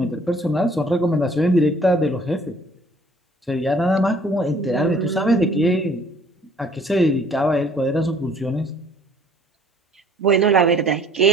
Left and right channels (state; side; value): normal; both; correlation 0.57